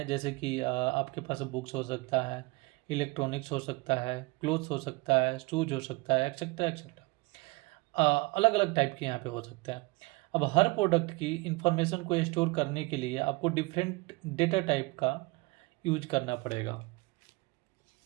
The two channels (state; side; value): quieter; left; 24.5 dB